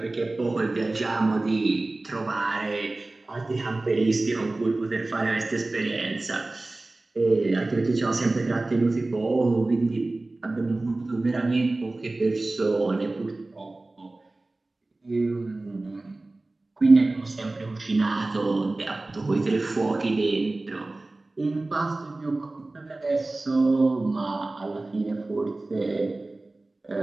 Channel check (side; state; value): left; quieter; 3.0 dB